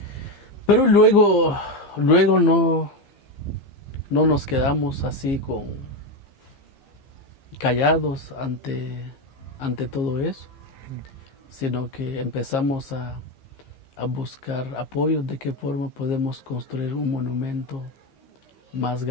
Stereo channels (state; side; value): late; right; 15 ms